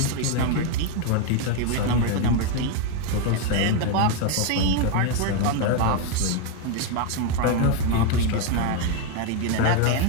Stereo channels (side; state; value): both; different; correlation 0.01